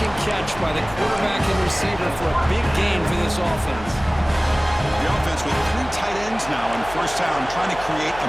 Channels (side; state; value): left; noise; hum, 16 dB below the sound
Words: and catch by the quarterback and receiver for a big gain for this offense. The offense with 3 tight ends now on first down, trying to create a